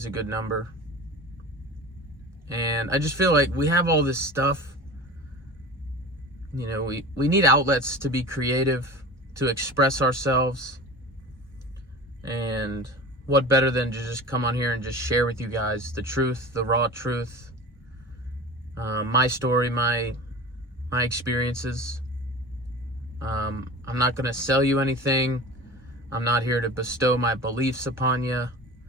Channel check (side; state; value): both; normal; correlation 0.35